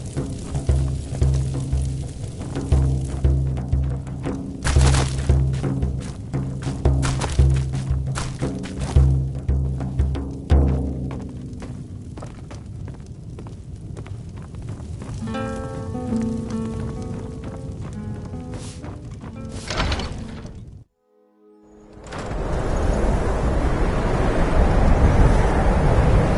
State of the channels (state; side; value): identical; both; correlation 1.00